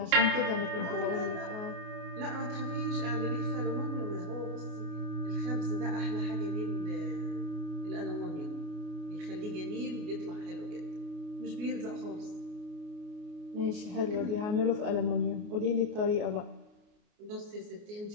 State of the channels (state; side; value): late; left; 29 ms